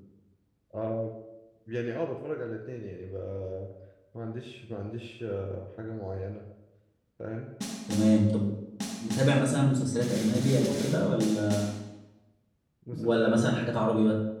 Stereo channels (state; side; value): identical; both; correlation 1.00